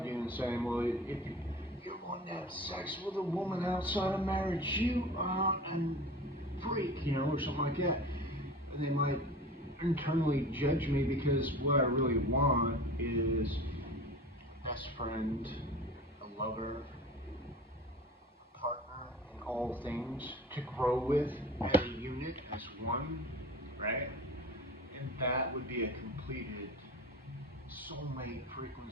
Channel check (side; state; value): both; normal; correlation 0.37